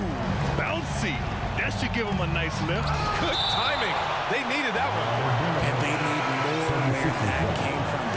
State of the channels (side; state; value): both; identical; correlation 1.00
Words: bouncy. That should give him a nice lift. Good timing. They needed that one. And they need more where that came from.